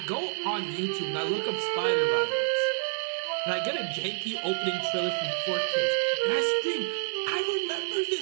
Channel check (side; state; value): left; silent; digital silence